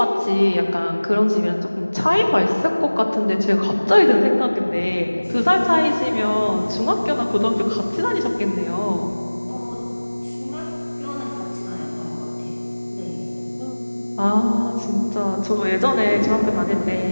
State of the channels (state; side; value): inverted; both; correlation -1.00